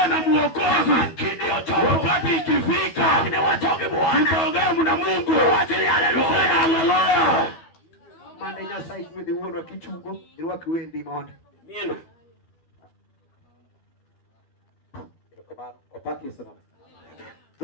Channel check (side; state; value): right; late; 12 ms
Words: na Mwokozi. Kidio choko. Wakati ikifika. Ni watoke Bwana. Tutaongea na Mungu. Wachili haleluya. Haleluya. Manda Nyasaye mwede uono kichugo. Irwa kiwendi monde. Nina. Opaki sana.